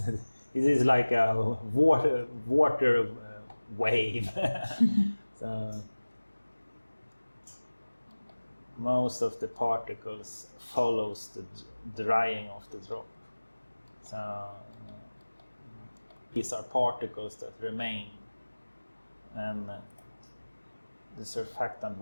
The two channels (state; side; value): inverted; both; correlation -1.00